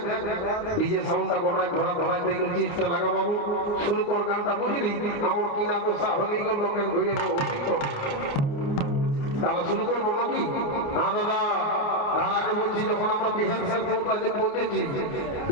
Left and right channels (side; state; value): right; late; 29 ms